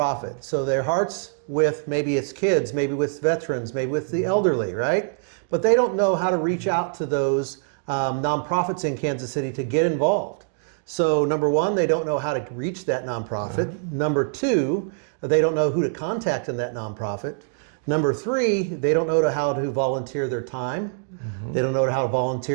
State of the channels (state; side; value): silent; left; digital silence